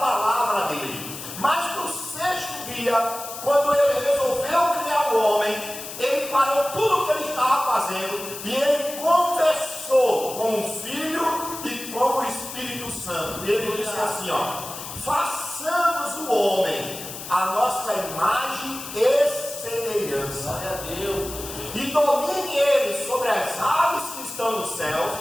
dele. Mas no 6º dia, quando Ele resolveu criar o homem, Ele parou tudo o que Ele estava fazendo e Ele conversou com o Filho e com o Espírito Santo. E Ele disse assim: façamos o homem a nossa imagem e semelhança. Glória a Deus. E domine Ele sobre as aves que estão nos céus,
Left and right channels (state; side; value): noise; left; hiss, 10 dB below the sound